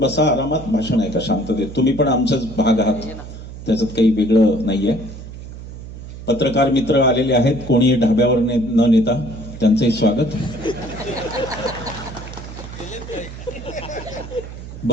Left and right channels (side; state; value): right; noise; hum, 12 dB below the sound